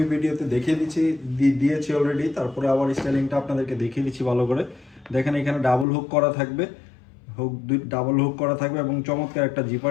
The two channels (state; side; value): drops out; right; at 5.9 s